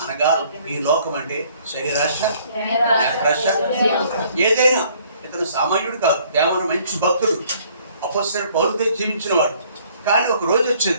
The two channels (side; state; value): both; inverted; correlation -0.60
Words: అనగా ఈ లోకం అంటే శరీరాశ, నేత్రాశ, ఏదైనా. ఇతను సామాన్యుడు కాదు, దేవన మంచి భక్తుడు, అపొస్తలుడైన పౌలుతో జీవించిన వాడు. కానీ ఒక రోజు